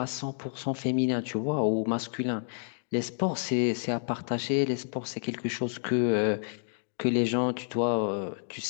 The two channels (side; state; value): right; silent; digital silence